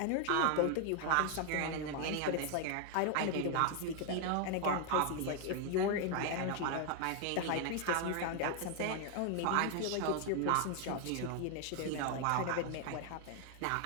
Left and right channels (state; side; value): different; both; correlation 0.00